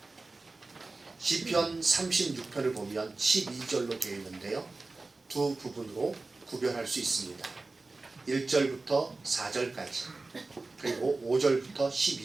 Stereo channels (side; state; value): left; quieter; 3.5 dB